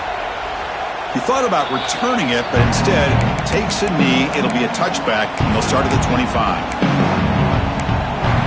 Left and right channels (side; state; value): both; identical; correlation 1.00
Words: He thought about returning it, but instead takes a knee. It'll be a touchback, and they'll start at the 25.